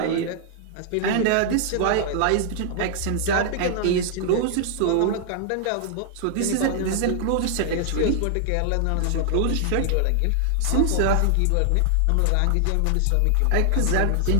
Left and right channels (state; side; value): different; both; correlation 0.00